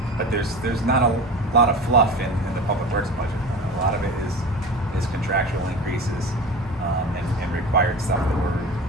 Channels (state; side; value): normal; both; correlation 0.33